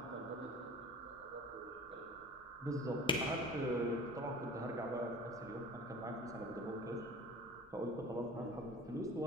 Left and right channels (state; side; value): normal; both; correlation 0.41